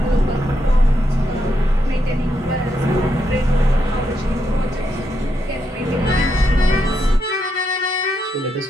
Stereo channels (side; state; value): both; normal; correlation 0.81